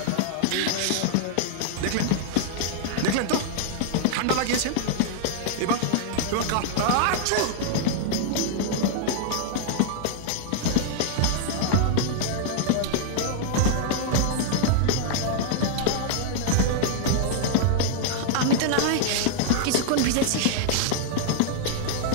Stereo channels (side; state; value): both; different; correlation -0.01